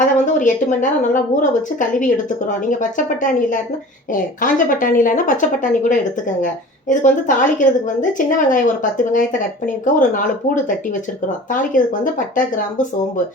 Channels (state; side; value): normal; both; correlation 0.41